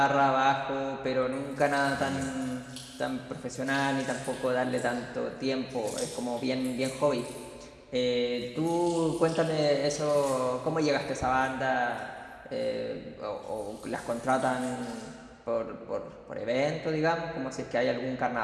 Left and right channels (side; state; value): both; identical; correlation 1.00